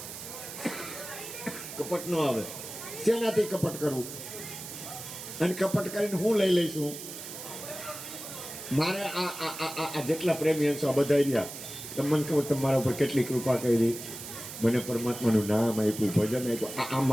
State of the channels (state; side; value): noise; right; hiss, 10 dB below the sound